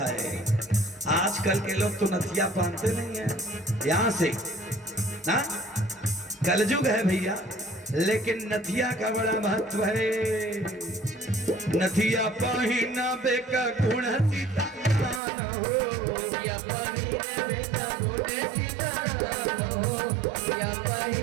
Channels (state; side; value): drops out; left; at 15.2 s